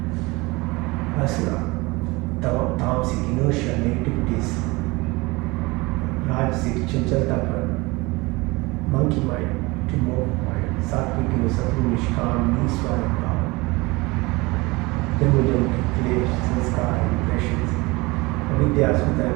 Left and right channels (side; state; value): left; quieter; 23.7 dB